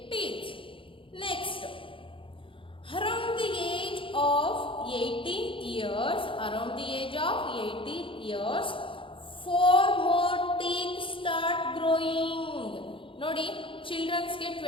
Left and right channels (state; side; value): late; right; 0.25 ms